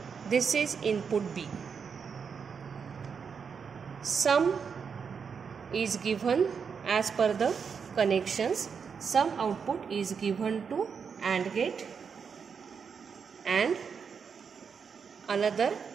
this is input B. Sum is given as per the connections. Sum output is given to AND gate and another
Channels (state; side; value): quieter; left; 6.2 dB